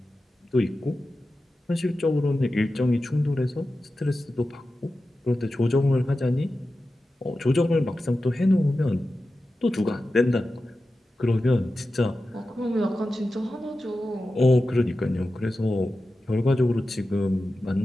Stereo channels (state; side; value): normal; both; correlation 0.93